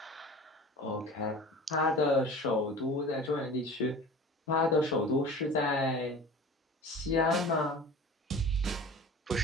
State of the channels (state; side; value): normal; both; correlation 0.39